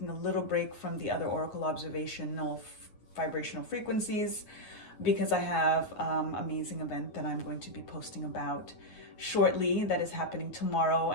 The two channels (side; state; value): right; late; 9.4 ms